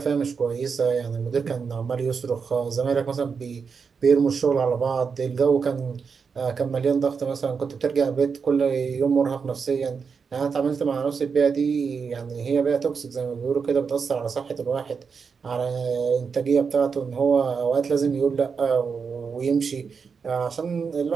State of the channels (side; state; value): left; quieter; 5.7 dB